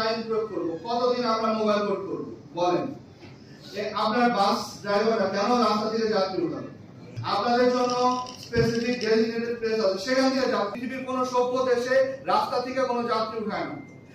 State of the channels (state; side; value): identical; both; correlation 1.00